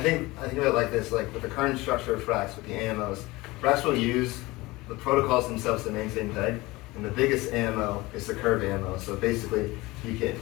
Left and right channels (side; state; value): right; quieter; 21.1 dB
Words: about it like this, like with the current structure of Frax, with the AMOs, Frax will use the protocols themselves to maintain peg, and the biggest AMO is the curve AMO. So basically, you can,